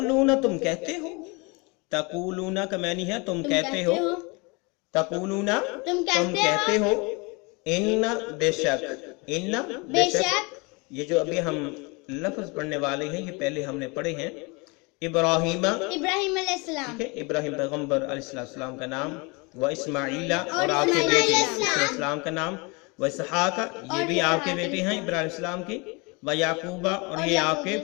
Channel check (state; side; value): quieter; right; 28.5 dB